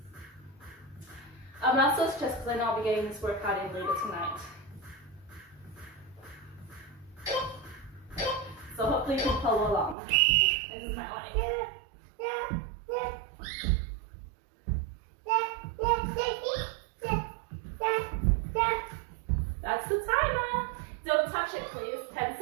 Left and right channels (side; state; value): left; drops out; at 10.0 s